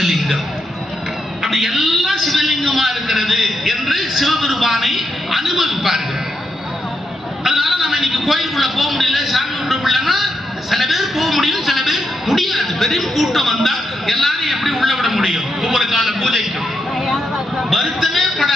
அப்படி எல்லாம் சிவலிங்கமா இருக்கிறது என்று சிவபெருமானை அனுபவிப்பார்கள். அதனால நம்ம இன்னைக்கு கோயிலுக்குள்ள போக முடியல, சாமி கும்பிட முடியலன்னா சில பேர் போக முடியும், சில பேர் முடியாது. பெரும் கூட்டம் வந்தா எல்லாரும் எப்படி உள்ள விட முடியும்? ஒவ்வொரு கால பூஜைக்கும் வருத்தமே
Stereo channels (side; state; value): both; normal; correlation 0.83